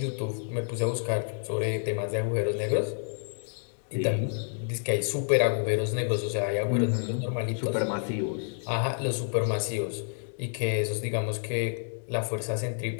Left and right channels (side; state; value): right; silent; 58 dB below the other